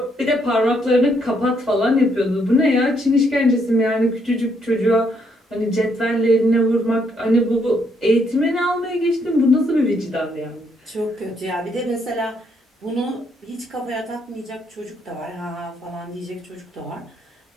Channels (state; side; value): normal; both; correlation 0.73